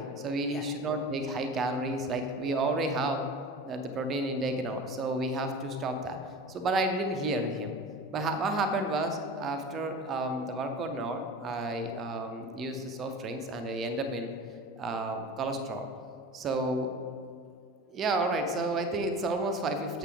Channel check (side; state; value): both; normal; correlation 0.35